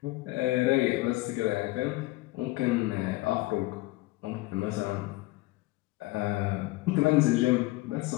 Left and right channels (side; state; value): right; quieter; 20.0 dB